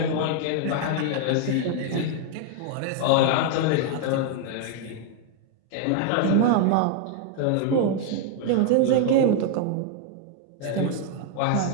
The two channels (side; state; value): both; different; correlation 0.00